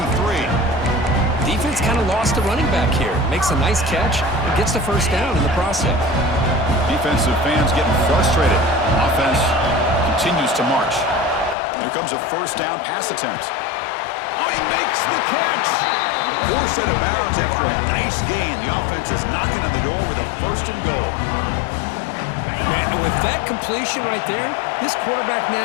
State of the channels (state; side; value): drops out; right; at 11.6 s